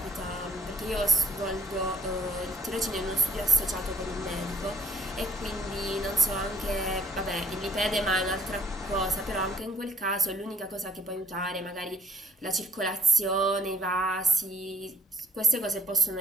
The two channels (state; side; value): normal; both; correlation 0.62